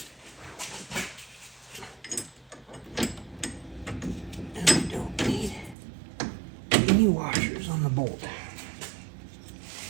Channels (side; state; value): left; drops out; at 5.8 s